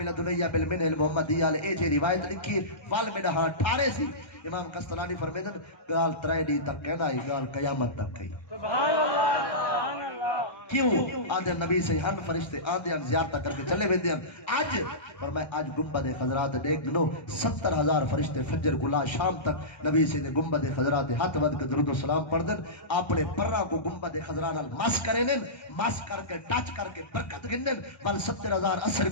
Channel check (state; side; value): late; right; 1.3 ms